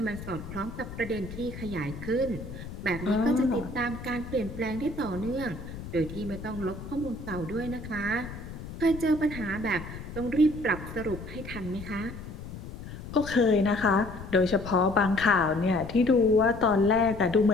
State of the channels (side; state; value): left; noise; rumble, 11 dB below the sound